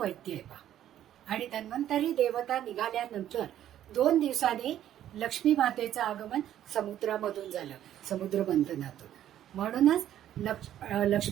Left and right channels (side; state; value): left; quieter; 11.5 dB